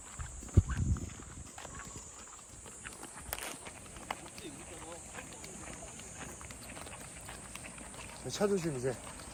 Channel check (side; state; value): both; identical; correlation 1.00